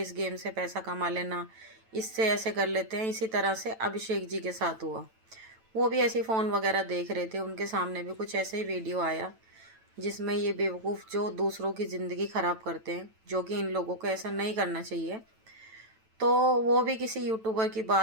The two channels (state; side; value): late; left; 9.0 ms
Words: गेम से पैसा कमा लेना, इससे ऐसे कर लेते हैं। इसी तरह से अभिषेक जी के साथ हुआ। वो भी ऐसे फ़ोन वगैरह देख रहे थे, उनके सामने भी कुछ ऐसे ही वीडियो आया जिसमें ये बेवकूफ़ जो दूसरों की ज़िंदगी ख़राब करते हैं, जो कि इन लोगों को ऐसा नहीं करना चाहिए। तो वो भी किसी यूट्यूबर की